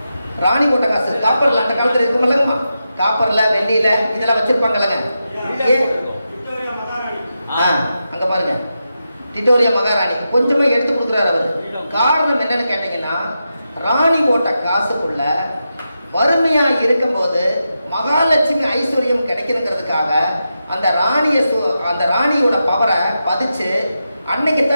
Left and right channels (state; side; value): inverted; both; correlation -0.88